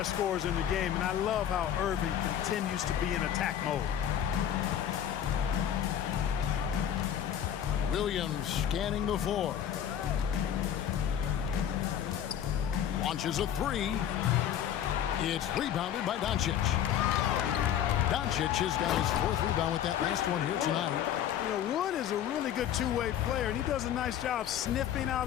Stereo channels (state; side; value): quieter; right; 9.9 dB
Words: scorers in the game, and I love how Irving continues to be in attack mode. Williams scanning the floor. Launches a 3. It's rebounded by Doncic. Doncic has got his 4th rebound with that last one here tonight. You know, Wood is a really good two-way player, and he does a nice job sniffing